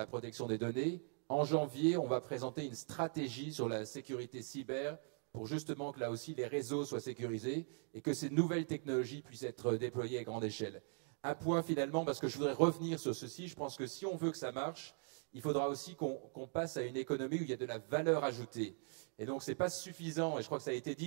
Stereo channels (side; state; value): left; silent; 50 dB below the other